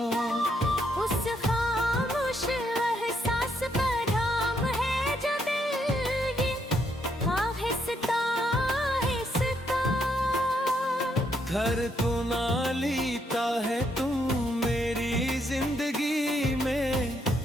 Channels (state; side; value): normal; both; correlation 0.75